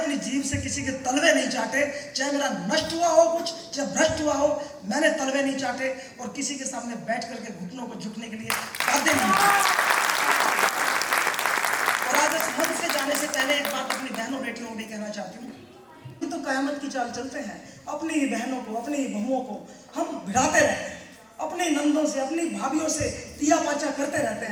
जीभ से किसी के तलवे नहीं चाटे। चाहे मेरा नष्ट हुआ हो कुछ, चाहे भ्रष्ट हुआ हो, मैंने तलवे नहीं चाटे और किसी के सामने बैठ करके घुटनों को झुकने के लिए बाध्य नहीं। और आज इस मंच से जाने से पहले एक बात अपनी बहनों बेटियों को भी कहना चाहती हूँ। तो कयामत की चाल चलते हैं, अपनी ही बहनों को, अपनी ही बहुओं को हम भिड़ाते रहते हैं, अपने नंदों से, अपनी भाभियों से तिया पाचा करते रहते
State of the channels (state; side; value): identical; both; correlation 1.00